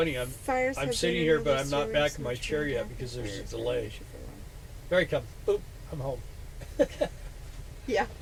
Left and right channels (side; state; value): both; identical; correlation 1.00